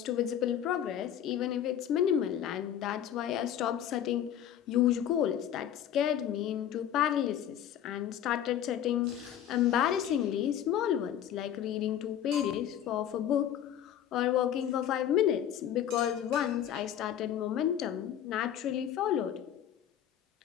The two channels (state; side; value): quieter; right; 10.3 dB